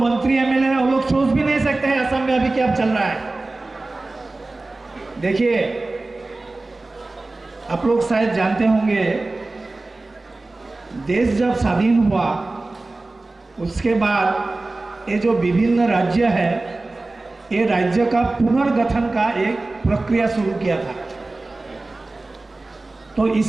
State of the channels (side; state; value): left; quieter; 3.1 dB